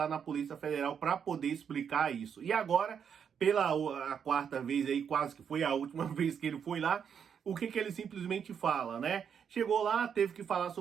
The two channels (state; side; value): quieter; left; 7.5 dB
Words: na Polícia Federal para poder explicar isso. E agora, pela a quarta vez aí, quase que foi a última vez que ele foi lá, o que ele simplesmente fala, né? Chegou lá, teve que falar